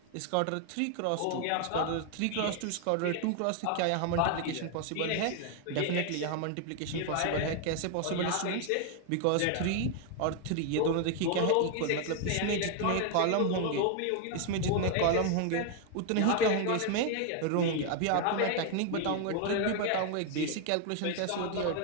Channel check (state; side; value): different; both; correlation 0.01